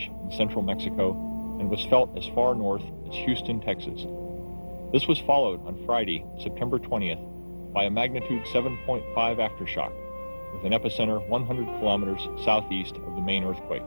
in central Mexico and was felt as far north as Houston, Texas. This was followed on Friday, September 20th, by a magnitude 7.5 aftershock, with an epicenter 100 kilometers southeast of the main earthquake.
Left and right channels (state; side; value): inverted; both; correlation -1.00